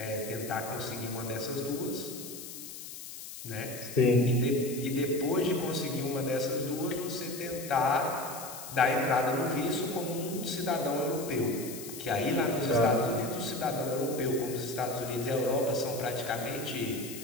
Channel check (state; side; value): noise; left; hiss, 11 dB below the sound